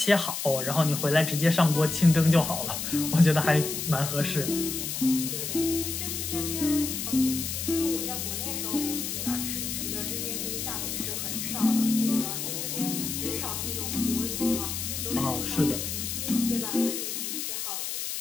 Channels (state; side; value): noise; left; hiss, 4 dB below the sound